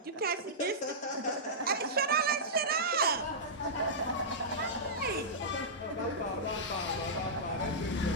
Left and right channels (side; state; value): both; normal; correlation -0.15